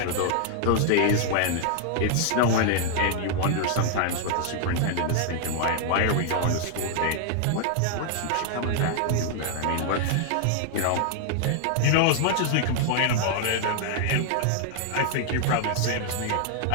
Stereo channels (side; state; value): both; different; correlation 0.00